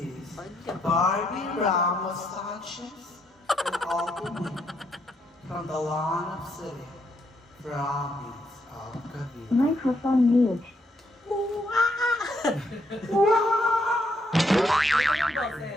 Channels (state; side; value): normal; both; correlation 0.75